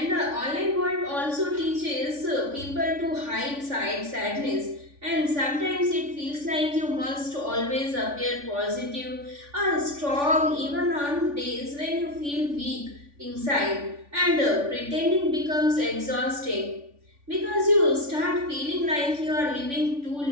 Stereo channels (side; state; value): left; late; 3.5 ms